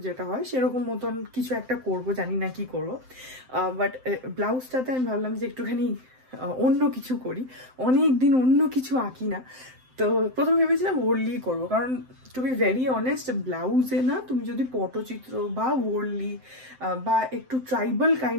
যেটা হয় সেরকম মতন কিছু একটা করব, জানি না কি করবো। বাট ব্লাউজটাতে আমি ভাবলাম যে একটুখানি অন্য কিছু করি, অনেক দিন অন্য কিছু আঁকি না। তো প্রথমে ভেবেছিলাম ওরলি করবো, কারণ টু বি ভেরি অনেস্ট ব্লাউজে না তুমি যদি পটচিত্র বা ওরলি বা একটু ট্রাইবাল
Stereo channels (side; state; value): left; late; 7.8 ms